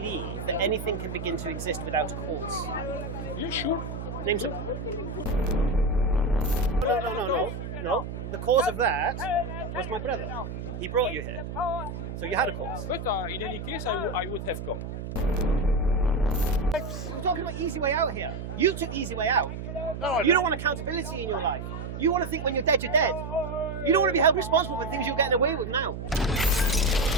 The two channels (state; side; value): noise; right; hum, 7 dB below the sound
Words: that anything can begin to exist without a cause? You sure? Name some. No. The cause of that was my brother. He brought you here. So you had a cause. But in any case, I would have come. We're talking about easy way out here. You took the easy way out. No, You don't want accountability in your life. You want to think when you're dead, you're dead. You don't want to be held responsible for things you're getting away with now.